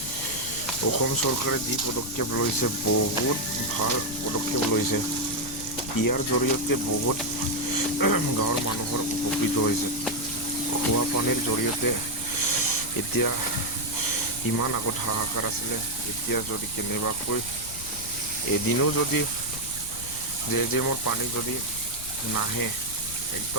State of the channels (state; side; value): noise; left; rumble, 13 dB below the sound